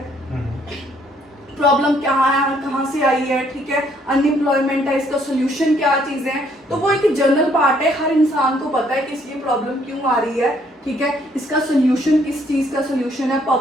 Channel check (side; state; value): both; normal; correlation 0.66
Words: प्रॉब्लम क्या है, कहाँ से आई है, ठीक है, अनएम्प्लॉयमेंट है, इसका सोल्यूशन क्या चीज़ें हैं। तो वो एक जनरल पार्ट है, हर इंसान को पता है कि इसकी प्रॉब्लम क्यों आ रही है, ठीक है, इसका सोल्यूशन किस चीज़ का सोल्यूशन है,